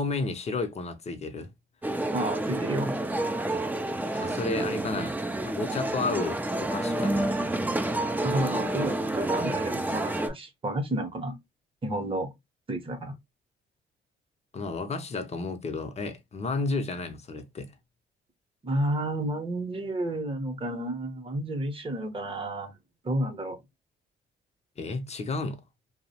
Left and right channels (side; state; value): both; normal; correlation 0.62